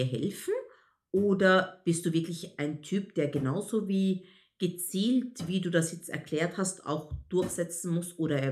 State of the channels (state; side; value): identical; both; correlation 1.00